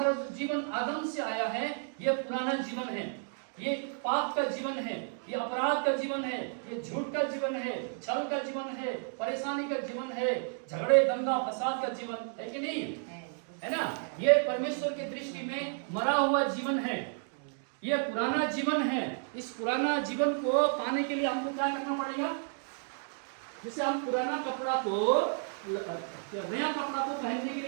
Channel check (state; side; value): silent; left; 56 dB below the other